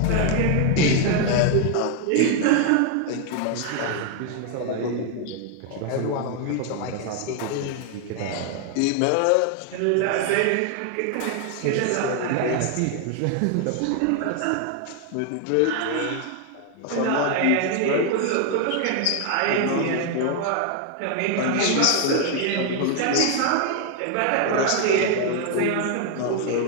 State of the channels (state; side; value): different; both; correlation 0.00